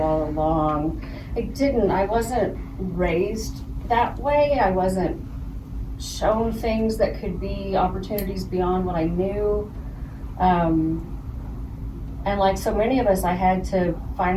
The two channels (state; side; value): identical; both; correlation 1.00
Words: along. I didn't. I wasn't raised that way. I wasn't shown things that could be opportunities beyond what I knew. And like so many of us, I had to